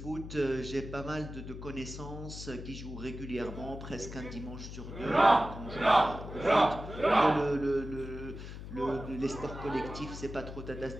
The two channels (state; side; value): noise; left; hum, 10 dB below the sound